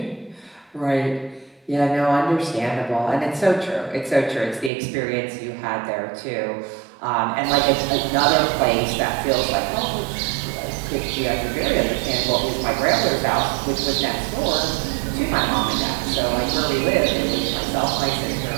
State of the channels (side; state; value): left; drops out; at 4.7 s